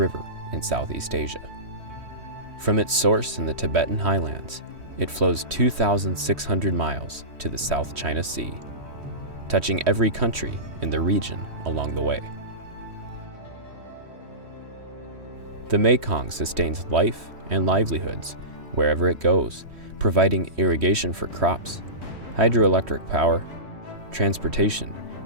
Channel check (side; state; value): left; late; 3.1 ms